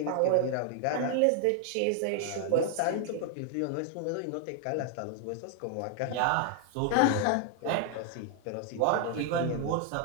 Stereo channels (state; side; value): different; both; correlation 0.00